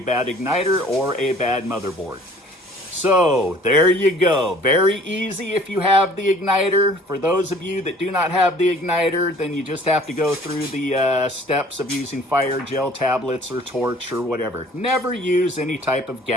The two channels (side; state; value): both; normal; correlation 0.52